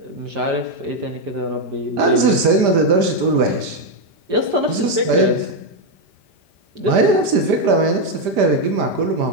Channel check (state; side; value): late; left; 5.0 ms